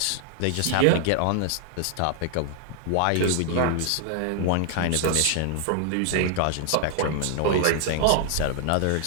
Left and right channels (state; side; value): different; both; correlation 0.00